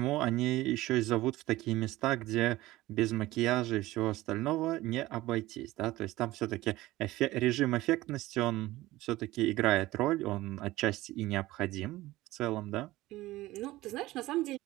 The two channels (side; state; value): left; quieter; 17.7 dB